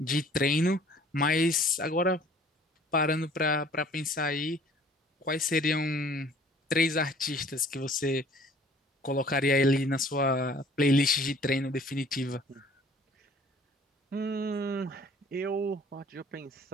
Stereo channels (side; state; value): both; normal; correlation 0.53